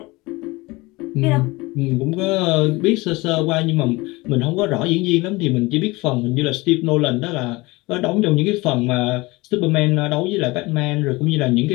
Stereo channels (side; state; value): right; quieter; 22.5 dB